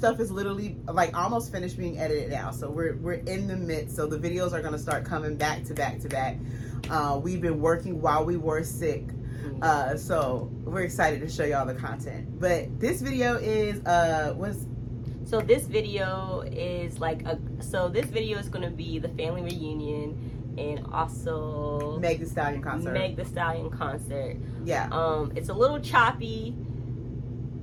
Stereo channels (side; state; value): both; identical; correlation 1.00